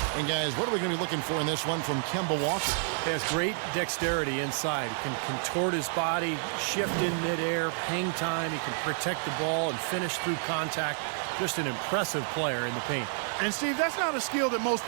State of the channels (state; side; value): silent; left; 58 dB below the other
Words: And guys, what are we going to be looking for in this one from Kemba Walker? He has great dexterity inside. He can contort his body, shift in midair, hang time. He can protect the ball and finish through contact. Just an impressive player in the paint. And Steve, that's not a skill that most